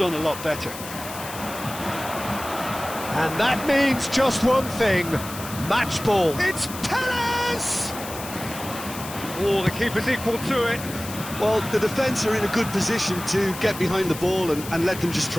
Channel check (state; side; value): noise; left; hiss, 11 dB below the sound